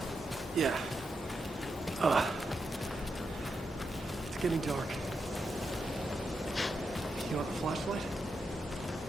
Yeah. It's getting dark. You want a flashlight?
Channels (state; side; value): normal; both; correlation 0.85